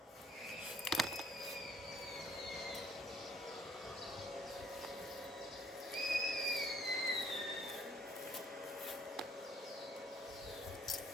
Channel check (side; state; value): both; normal; correlation 0.62